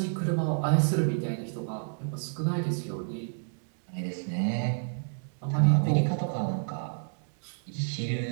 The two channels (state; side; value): silent; left; digital silence